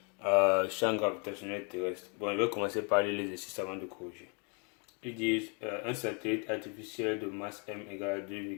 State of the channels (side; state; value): right; quieter; 36.3 dB